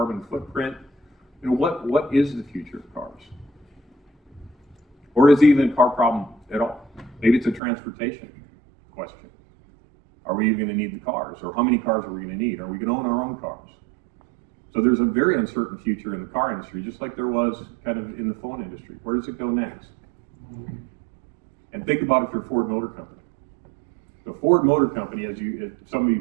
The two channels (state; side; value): drops out; left; at 7.6 s